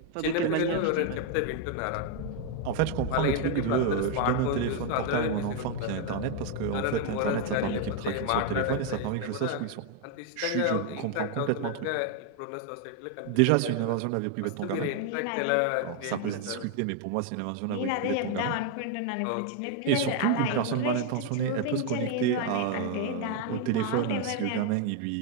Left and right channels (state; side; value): different; both; correlation 0.01